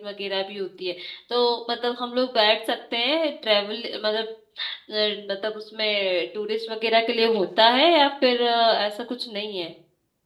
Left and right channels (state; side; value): identical; both; correlation 1.00